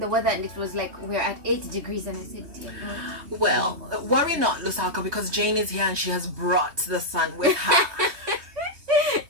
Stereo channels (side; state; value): left; late; 3.2 ms